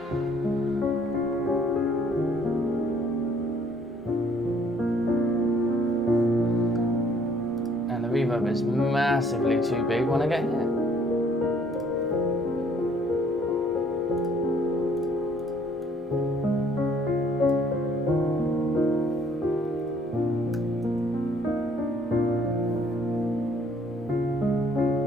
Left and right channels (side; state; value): both; normal; correlation 0.61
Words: And the reverb is massively too big when I get here.